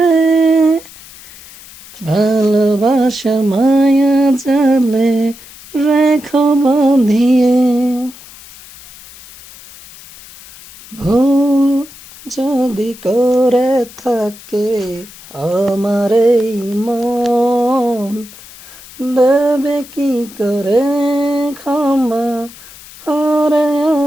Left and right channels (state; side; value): noise; left; hiss, 19 dB below the sound